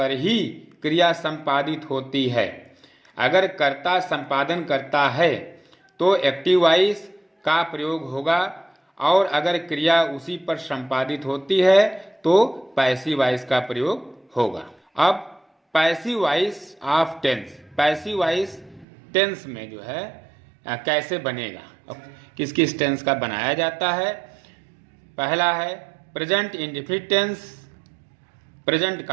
ही क्रिया संपादित होती है। अगर कर्ता संपादन करता है तो एक्टिव वॉइस का प्रयोग होगा, और अगर क्रिया उसी पर संपादित होती है तो पैसिव वॉइस का प्रयोग होगा। अब passive voice of tense, passive voice tense में जो है कैसे बनेगा, किस किस टेंस का बनाया जाता है। पहला है present indefinite tense, present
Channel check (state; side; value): drops out; left; at 18.9 s